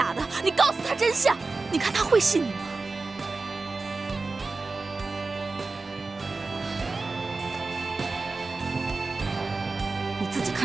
的，你告诉他真相，你看他会信你吗？你自己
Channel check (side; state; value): left; quieter; 3.8 dB